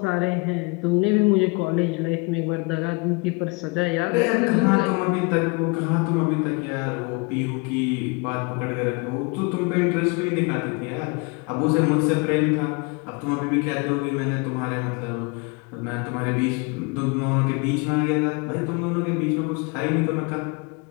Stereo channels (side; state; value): right; quieter; 29.2 dB